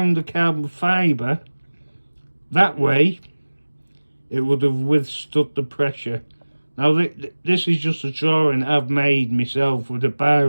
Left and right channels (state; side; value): inverted; both; correlation -1.00